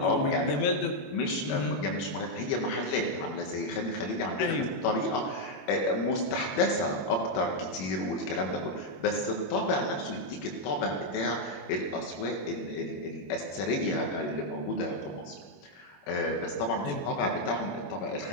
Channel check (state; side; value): late; right; 21 ms